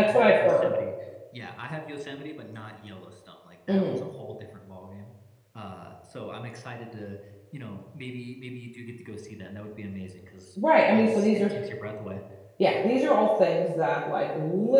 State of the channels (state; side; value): identical; both; correlation 1.00